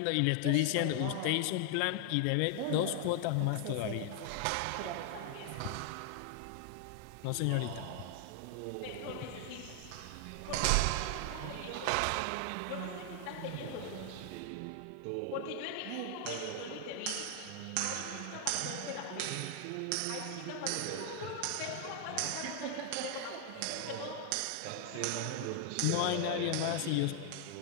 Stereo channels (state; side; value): different; both; correlation 0.00